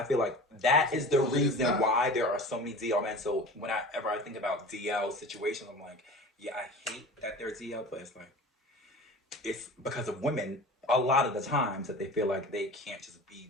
feel like that is the reason why there are so many DL men. So whenever I think about DL situations, I'm like, yeah, I hate that they're DL, but it's like it's because of women a lot of the times that they feel like they can't just be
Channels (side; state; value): both; normal; correlation 0.37